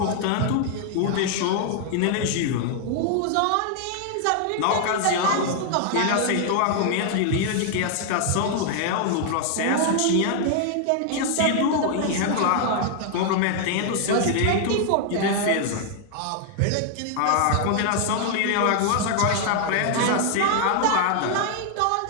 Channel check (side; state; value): both; different; correlation 0.00